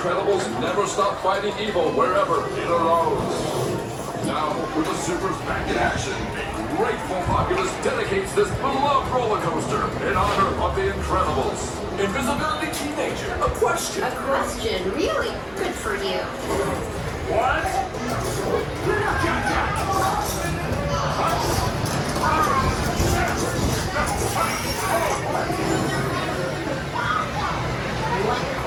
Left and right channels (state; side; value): identical; both; correlation 1.00